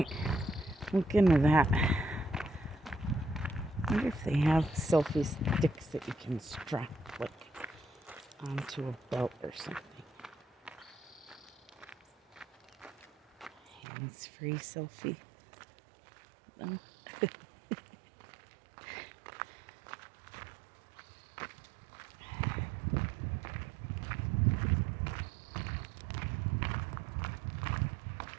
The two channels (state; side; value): drops out; left; at 13.8 s